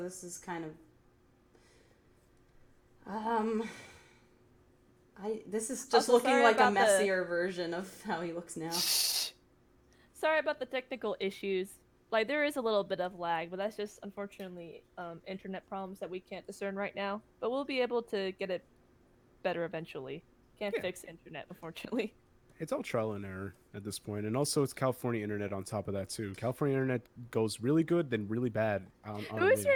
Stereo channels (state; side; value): identical; both; correlation 1.00